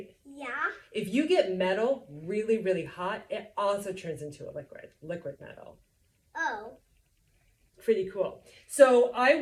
Yeah. If you get metal really, really hot, it also turns into a liquid metal. Oh. Pretty cool. So I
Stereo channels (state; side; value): identical; both; correlation 1.00